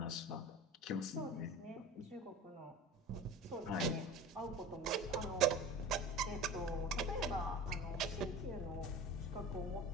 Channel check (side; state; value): both; normal; correlation 0.34